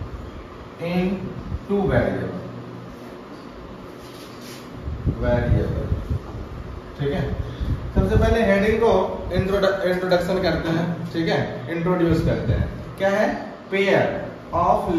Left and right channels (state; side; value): identical; both; correlation 1.00